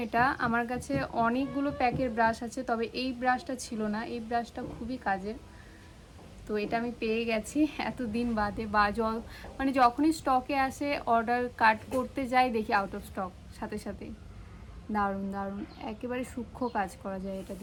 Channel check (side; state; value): both; identical; correlation 1.00